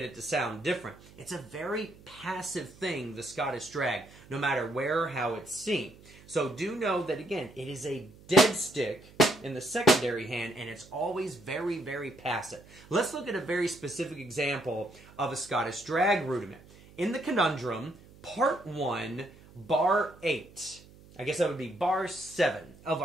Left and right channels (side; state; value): right; noise; hum, 23 dB below the sound